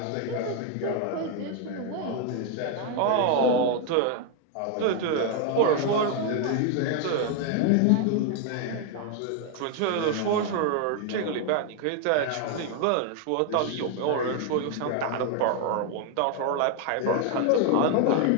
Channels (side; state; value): both; different; correlation 0.01